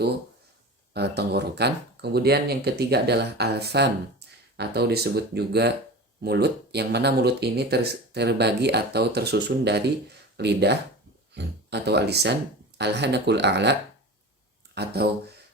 tenggorokan. Kemudian yang ketiga adalah al-fam, atau disebut juga mulut, yang mana mulut ini terbagi atau tersusun dari lidah atau alisan, al-hanakul a'la atau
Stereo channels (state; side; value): normal; both; correlation 0.32